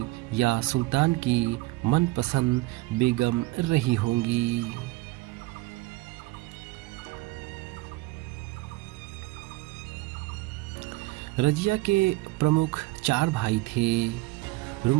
या सुल्तान की मनपसंद बेगम रही होंगी। रजिया के प्रमुख 4 भाई थे:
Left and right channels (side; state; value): left; quieter; 20.2 dB